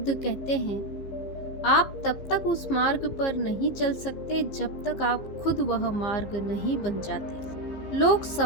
कहते हैं, आप तब तक उस मार्ग पर नहीं चल सकते जब तक आप खुद वह मार्ग नहीं बन जाते। लोग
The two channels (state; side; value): late; right; 15 ms